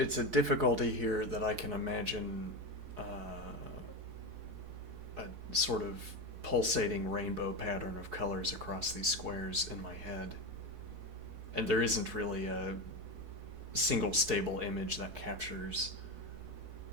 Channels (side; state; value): left; late; 4.7 ms